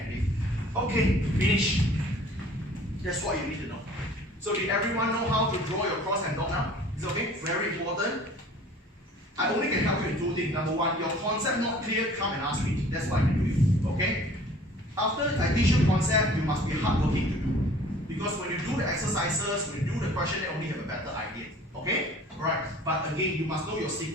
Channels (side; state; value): both; normal; correlation 0.49